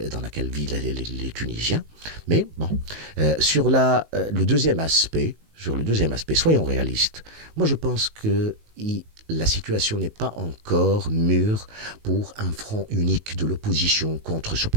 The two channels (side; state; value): left; late; 19 ms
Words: Tunisiens. Mais bon, sur le deuxième aspect, soyons réalistes. Moi, je pense que la situation n'est pas encore mûre pour un front unique de l'opposition contre ce